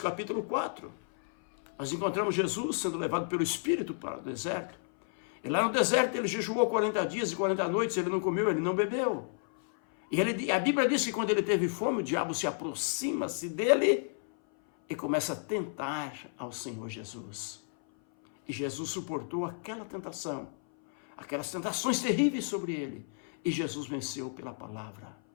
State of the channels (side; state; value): right; silent; 57 dB below the other